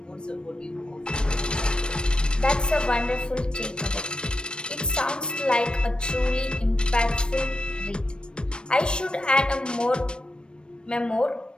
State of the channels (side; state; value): right; late; 0.053 ms